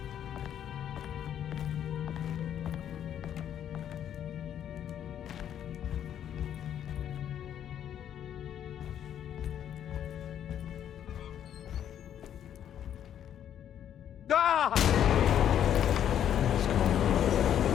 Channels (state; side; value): quieter; right; 9.9 dB